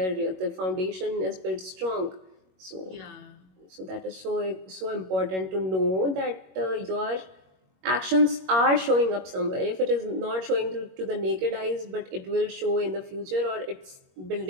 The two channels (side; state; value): left; late; 21 ms